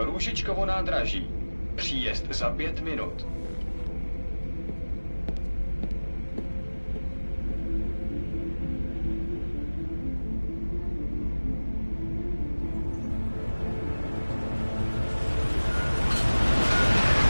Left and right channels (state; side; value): inverted; both; correlation -1.00